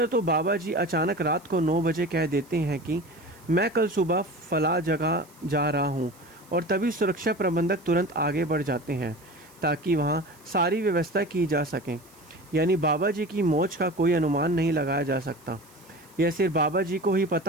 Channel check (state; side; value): noise; right; hiss, 27 dB below the sound